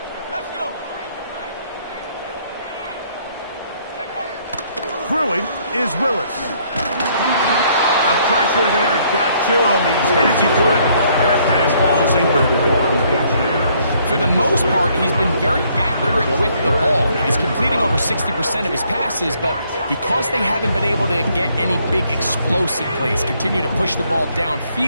Let's go. Throwing is Willis. The pressure there got to him. He's hit as he threw it. That pass falls incomplete. For the most part, he's been very accurate with the ball. He's completing over 60% of his passes, but because they haven't been able to get any big explosive plays, continue to push the ball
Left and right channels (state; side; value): inverted; both; correlation -0.66